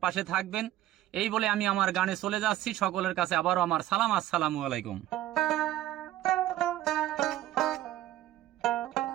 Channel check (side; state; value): left; quieter; 14.1 dB